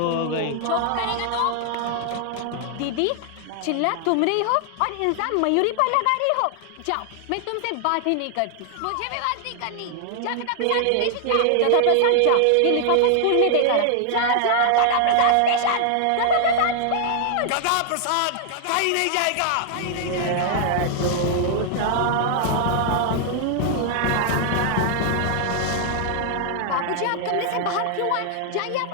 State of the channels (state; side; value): different; both; correlation 0.00